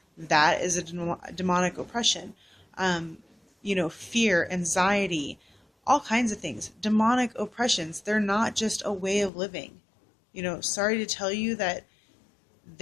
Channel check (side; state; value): right; drops out; at 9.3 s